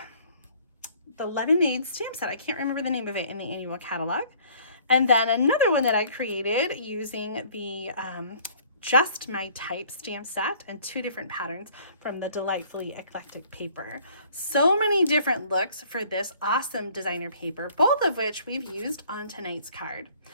lemonade stamp set. I can't remember the name of it in the annual catalog. And then another one that I created using the Just My Type stamp set and 2 different patterns from the Delightfully Eclectic paper. So many different looks for this awesome designer paper, both of which we've used on tonight's card.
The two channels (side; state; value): both; inverted; correlation -0.56